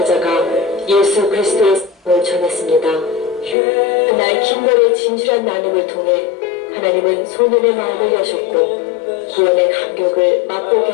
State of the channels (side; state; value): right; drops out; at 3.6 s